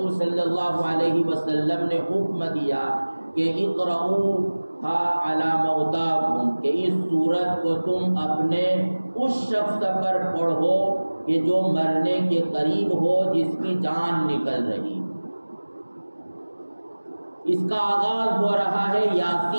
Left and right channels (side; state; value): both; inverted; correlation -1.00